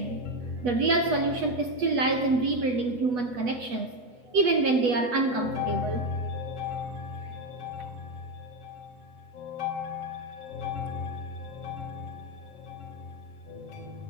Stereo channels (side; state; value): left; late; 8.2 ms